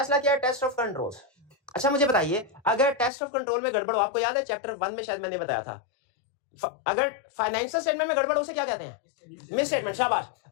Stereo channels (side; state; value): right; drops out; at 3.1 s